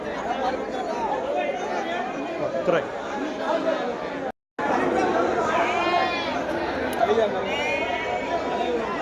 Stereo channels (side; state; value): both; identical; correlation 1.00